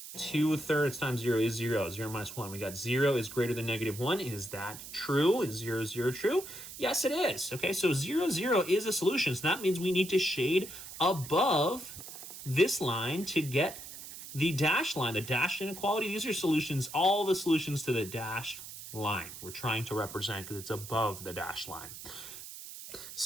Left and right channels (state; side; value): noise; right; hiss, 12 dB below the sound